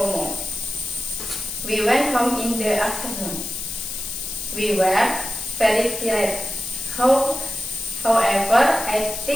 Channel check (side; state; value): left; noise; hiss, 6 dB below the sound